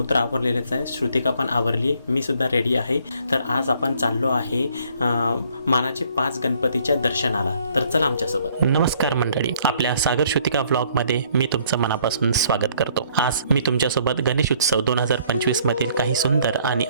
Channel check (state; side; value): inverted; both; correlation -0.63